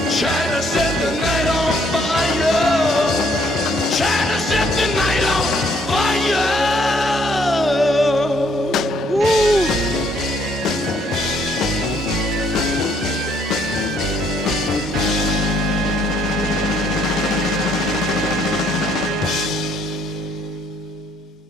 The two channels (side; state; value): both; normal; correlation 0.67